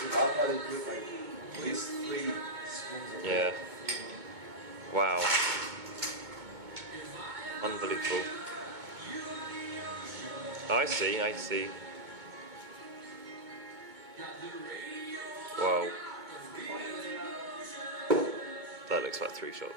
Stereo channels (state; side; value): late; left; 2.2 ms